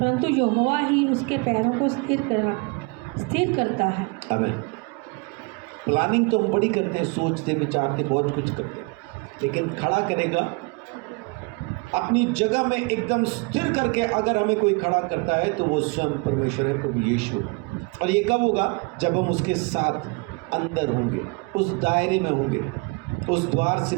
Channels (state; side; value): quieter; left; 30.0 dB